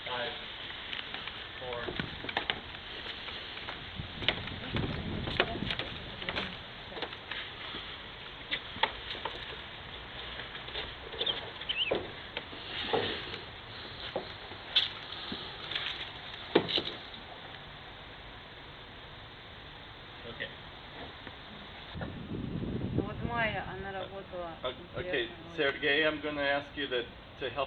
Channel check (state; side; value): identical; both; correlation 1.00